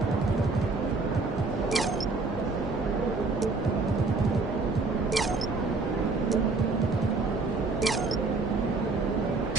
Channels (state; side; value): quieter; left; 3.7 dB